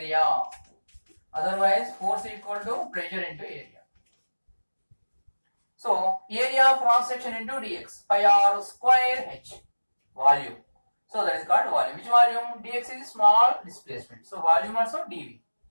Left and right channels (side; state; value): both; inverted; correlation -1.00